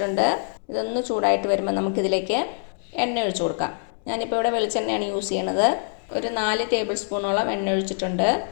ഇതൊന്ന് ചൂടായിട്ട് വരുമ്പോൾ നമുക്കിതിലേക്ക് എണ്ണ ഒഴിച്ചു കൊടുക്കാം. ഞാനിപ്പോൾ ഇവിടെ വെളിച്ചെണ്ണയാണ് യൂസ് ചെയ്യണത്. ഒരു 4 ടേബിൾ സ്പൂണോളം എണ്ണ ഒഴിച്ചിട്ടുണ്ട്.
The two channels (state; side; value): silent; right; 62 dB below the other